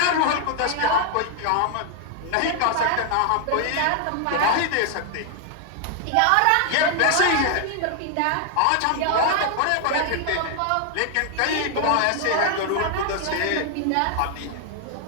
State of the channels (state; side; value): different; both; correlation 0.00